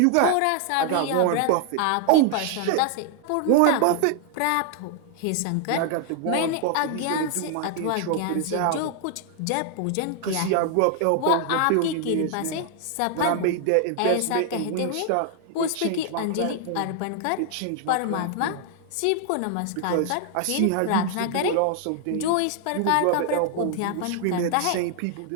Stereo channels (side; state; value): both; different; correlation 0.00